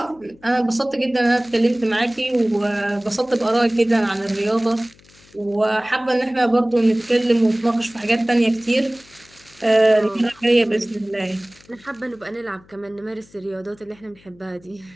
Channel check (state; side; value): noise; left; hum, 28 dB below the sound